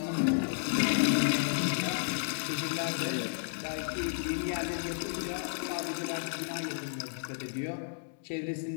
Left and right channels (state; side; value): silent; right; digital silence